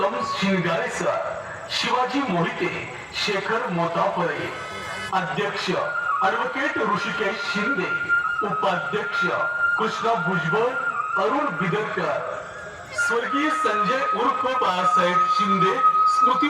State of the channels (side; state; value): both; identical; correlation 1.00